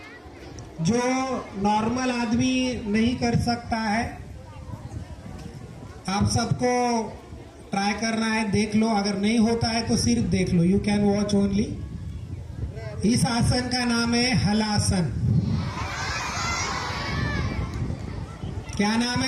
जो नॉर्मल आदमी नहीं कर सकता है। आप सबको ट्राई करना है, देख लो। अगर नहीं होता है तो सिर्फ देख लो, यू कैन वॉच ओनली। इस आसन का नाम है हलासन। क्या नाम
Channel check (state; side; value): identical; both; correlation 1.00